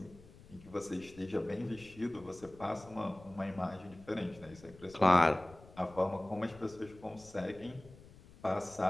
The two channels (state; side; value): noise; left; rumble, 21 dB below the sound